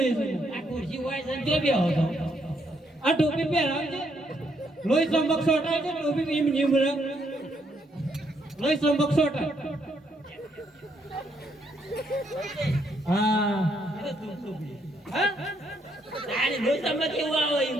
છે આ ખુરશી હોય છે જો બે હતો આ ટોપી પહેરાવજે લોહી ચમક સોટાય છે ટોપી એમ નીમ લોહી ચમક સોટાય હા હા તારે રોજ તમને કેવું આવે એમ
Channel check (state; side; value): normal; both; correlation 0.74